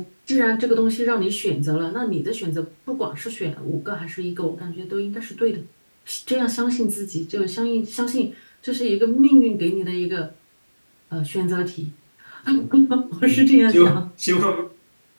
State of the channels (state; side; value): inverted; both; correlation -1.00